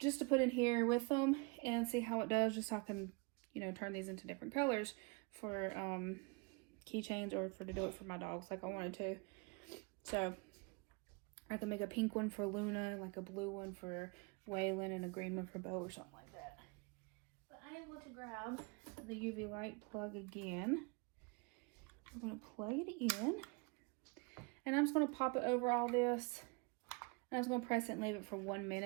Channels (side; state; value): left; quieter; 29.8 dB